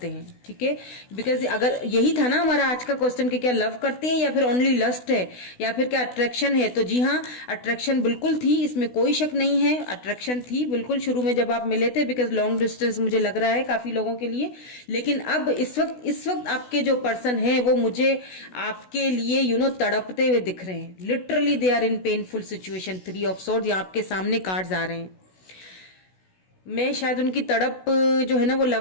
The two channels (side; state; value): right; late; 16 ms